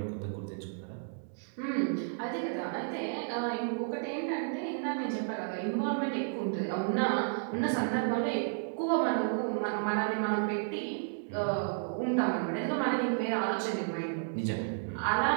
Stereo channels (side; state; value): left; silent; digital silence